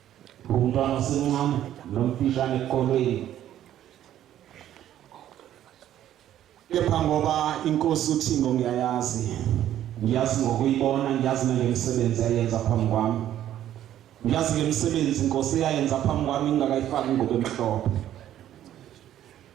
Umntwana osemncane nomfishane ekolweni, kepha ngoba inkosi uThixo ngiyayazi ngokuyibona, ngiyazi ngemisebenzi ayenza phambi kwami, ngiyazi ngemisebenzi inkosi eyayenza phambi kwami ngingakayifaki ingubo emhlophe.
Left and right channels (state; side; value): quieter; left; 11.8 dB